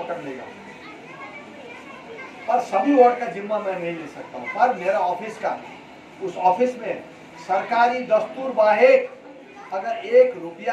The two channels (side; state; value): both; identical; correlation 1.00